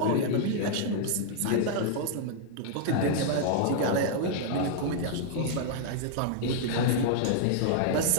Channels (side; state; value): both; different; correlation -0.01